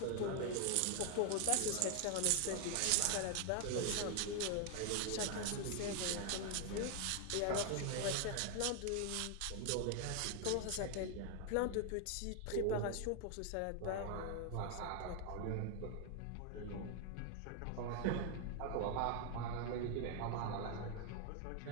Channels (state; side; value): different; both; correlation 0.00